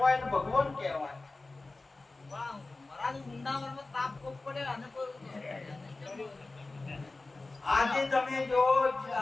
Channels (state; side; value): quieter; right; 3.3 dB